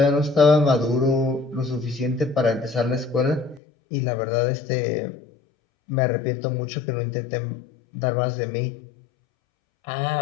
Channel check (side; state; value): right; drops out; at 3.6 s